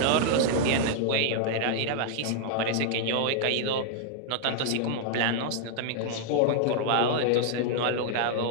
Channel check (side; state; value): both; different; correlation -0.01